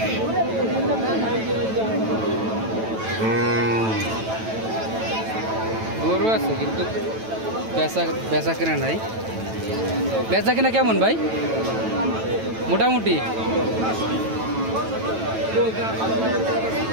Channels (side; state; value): left; late; 9.1 ms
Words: গরু আছে কিন্তু বেচা কেনা নাই। বেচা কেনা কেমন ভাই? মোটামুটি